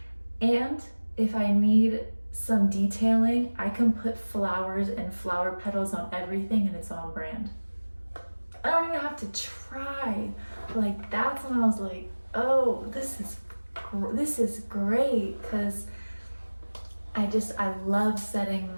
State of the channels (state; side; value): inverted; both; correlation -1.00